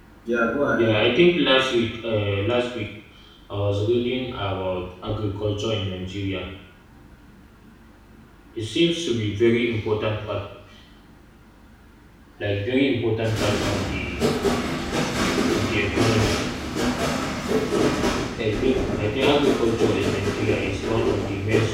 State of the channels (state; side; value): identical; both; correlation 1.00